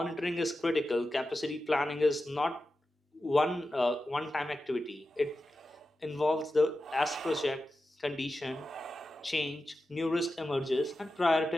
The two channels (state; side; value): normal; both; correlation 0.92